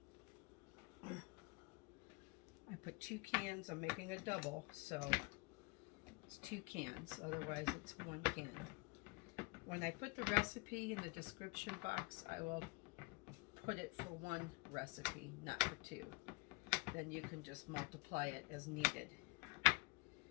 I put 2 cans. I'm making a double, so it's 2 cans. Otherwise, it's 1 can. When I put the recipe in the description box, I will put it for 1 recipe, not for 2. Then you can just multiply it as needed.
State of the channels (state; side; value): quieter; right; 27.8 dB